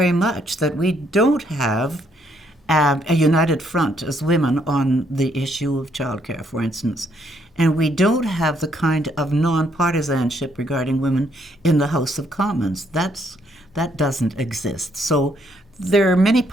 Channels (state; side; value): normal; both; correlation 0.71